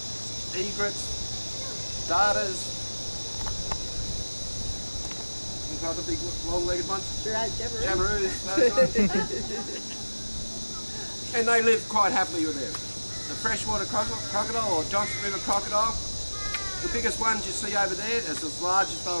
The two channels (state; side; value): inverted; both; correlation -1.00